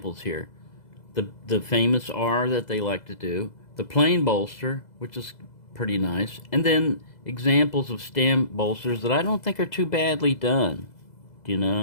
here. The famous R that they like to do, the plain bolster, which is pretty nice, and then examples of stamp bolsters that I don't think are too badly done.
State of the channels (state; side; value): late; right; 2.0 ms